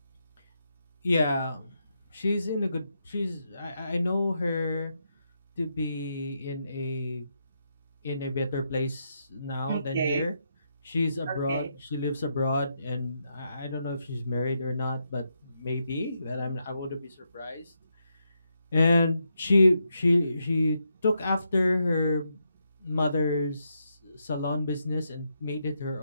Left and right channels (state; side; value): inverted; both; correlation -0.82